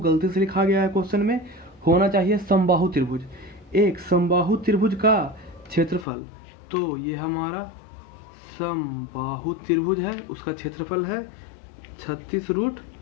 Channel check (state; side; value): drops out; right; at 6.1 s